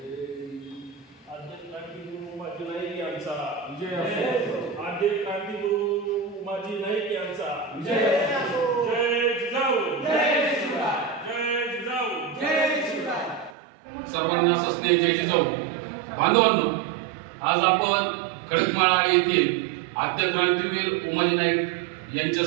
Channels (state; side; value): drops out; left; at 13.5 s